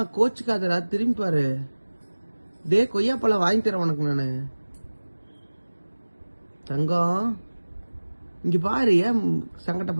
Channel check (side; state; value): both; inverted; correlation -1.00